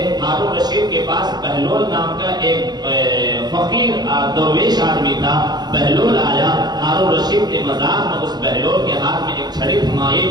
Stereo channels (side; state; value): left; late; 0.20 ms